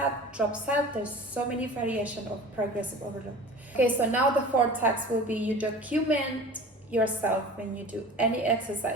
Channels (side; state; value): both; normal; correlation 0.39